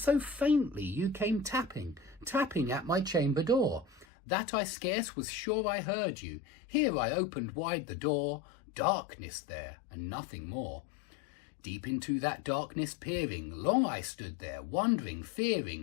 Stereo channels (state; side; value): drops out; right; at 4.0 s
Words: faintly you came tapping at my chamber door, that I scarce was sure I heard you. Here I opened wide the door, darkness there, and nothing more. Deep into that darkness peering, long I stood there, wondering,